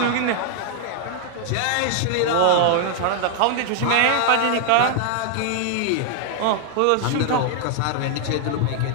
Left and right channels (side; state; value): both; different; correlation 0.00